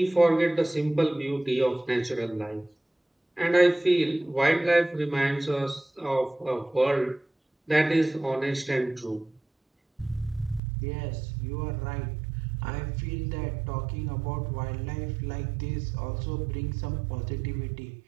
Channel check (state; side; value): drops out; left; at 10.6 s